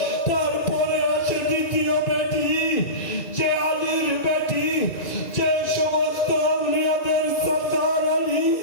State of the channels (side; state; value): right; late; 1.9 ms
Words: তারপরে আছে দ্বিতীয় বেটি, যে আলীর বেটি, যে সমস্ত আউলিয়াদের সরদার আলী।